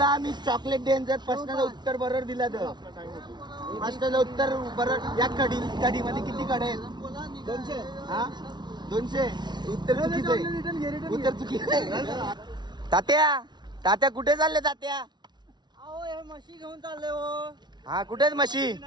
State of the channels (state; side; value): late; left; 0.20 ms